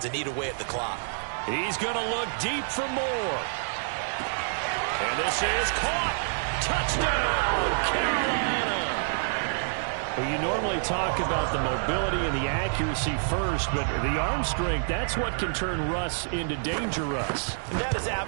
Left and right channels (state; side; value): silent; left; 59 dB below the other